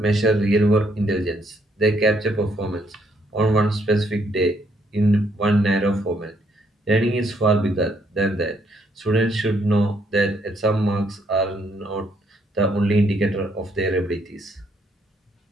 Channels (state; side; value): normal; both; correlation 0.71